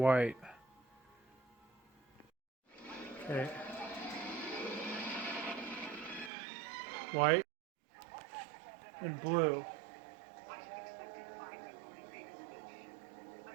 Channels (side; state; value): left; drops out; at 6.3 s